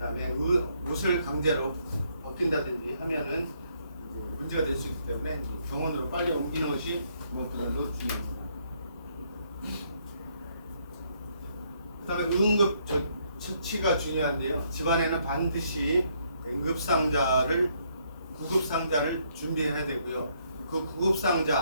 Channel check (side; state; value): both; inverted; correlation -0.71